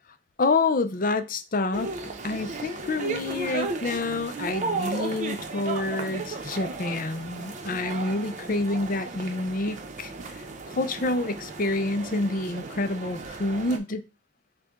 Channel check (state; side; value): normal; both; correlation 0.24